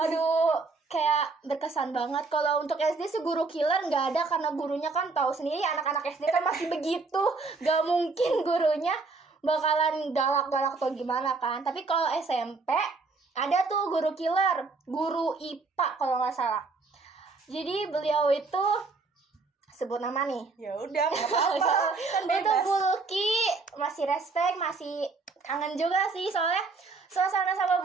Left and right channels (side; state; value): left; quieter; 4.0 dB